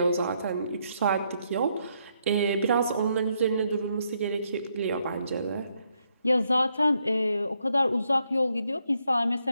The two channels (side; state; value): both; inverted; correlation -0.76